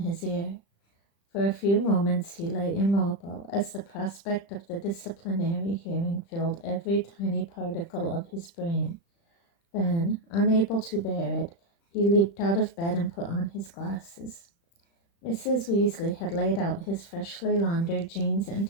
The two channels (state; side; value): late; right; 35 ms